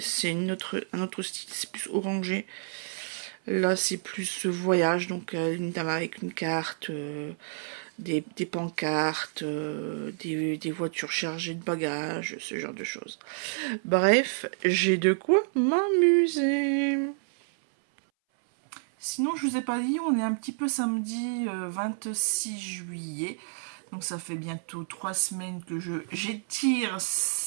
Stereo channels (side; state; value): left; silent; 58 dB below the other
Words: un autre style, c'est plus orangé. Là, c'est plus voyage, donc une dame avec une carte, des pancartes, des voitures chargées de bagages, ce genre de choses. Bref, j'ai de quoi m'amuser. Sinon, je vous ai pas dit, on est un petit peu samedi 26 juillet. Donc ça fait bientôt 3 semaines que j'étire